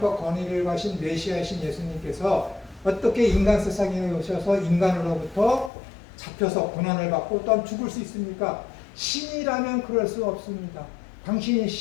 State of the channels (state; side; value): drops out; right; at 5.7 s